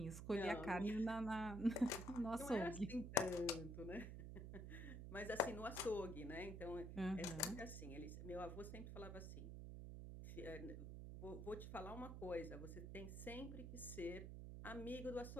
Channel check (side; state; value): right; noise; hum, 7 dB below the sound